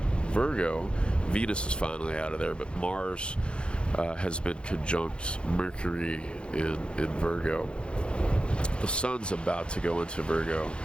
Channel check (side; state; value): right; late; 0.056 ms